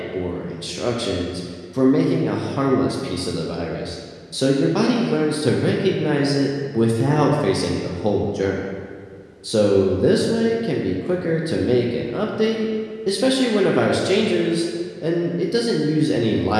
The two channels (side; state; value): both; identical; correlation 1.00